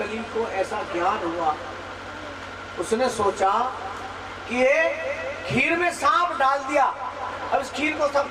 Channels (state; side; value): identical; both; correlation 1.00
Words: को ऐसा ज्ञान हुआ, उसने सोचा कि ये खीर में सांप डाल दिया, अब इस खीर को